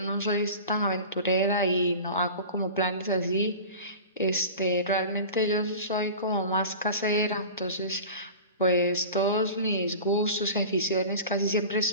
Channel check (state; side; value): inverted; both; correlation -0.36